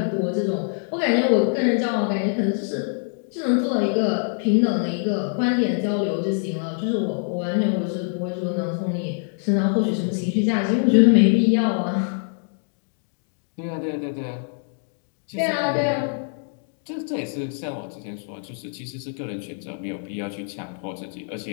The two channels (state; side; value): silent; right; 61 dB below the other